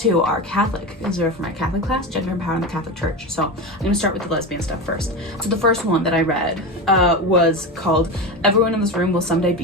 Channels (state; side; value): normal; both; correlation 0.22